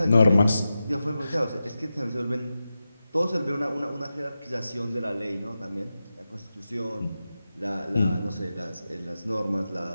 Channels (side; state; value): both; inverted; correlation -0.92